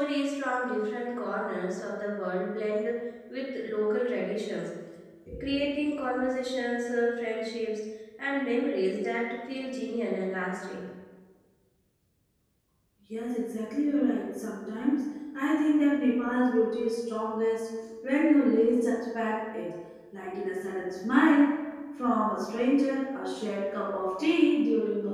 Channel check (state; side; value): identical; both; correlation 1.00